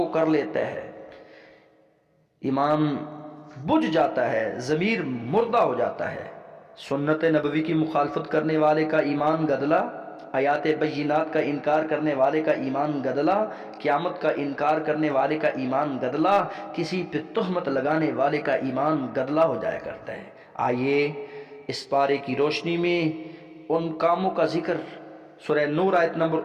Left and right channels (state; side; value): identical; both; correlation 1.00